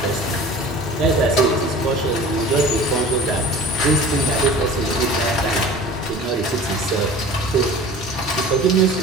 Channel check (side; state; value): both; normal; correlation 0.42